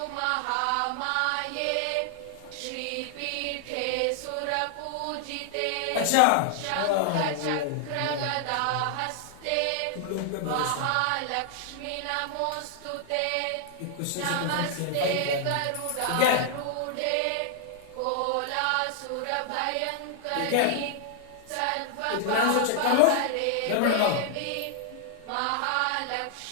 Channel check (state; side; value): different; both; correlation 0.00